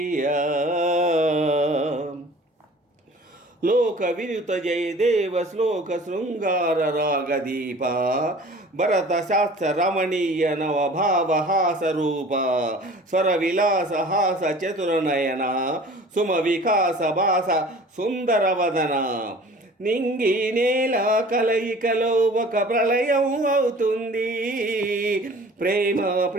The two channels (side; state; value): both; normal; correlation 0.45